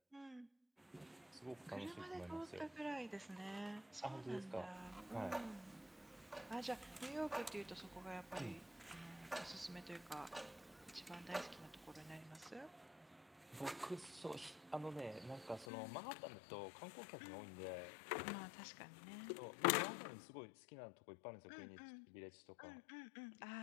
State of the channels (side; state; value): right; drops out; at 15.7 s